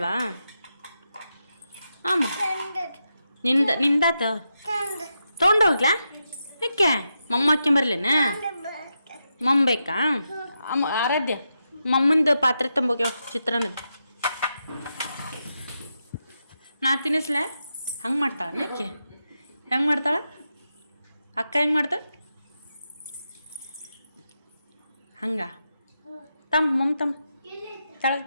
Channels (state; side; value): inverted; both; correlation -0.86